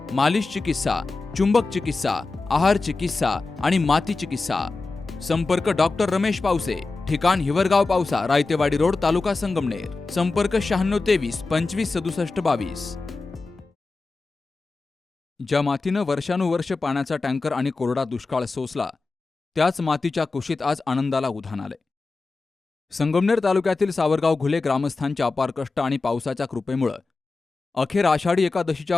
मालिश चिकित्सा, चुंबक चिकित्सा, आहार चिकित्सा आणि माती चिकित्सा. संपर्क डॉक्टर रमेश पावसे, ठिकाण हिवरगाव पावसा, रायतेवाडी रोड, तालुका संगमनेर. संपर्क 9623 25 67 22. ज्या मातीनं वर्षानुवर्ष पाण्याचा टँकर आणि कोरडा दुष्काळ सोसला, त्याच मातीच्या कुशीत आज आनंदाला उधाण आले. संगमनेर तालुक्यातील सावरगाव घुले ग्रामस्थांच्या अपार कष्ट आणि पावसाच्या कृपेमुळे अखेर आषाढी एकादशीच्या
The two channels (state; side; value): quieter; right; 3.7 dB